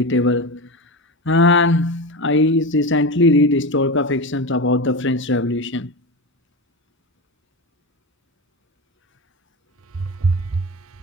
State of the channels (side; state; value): both; normal; correlation 0.21